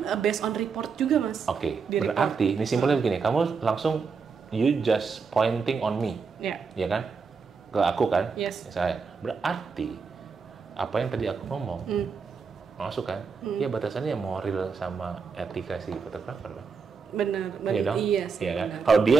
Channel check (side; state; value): left; quieter; 5.3 dB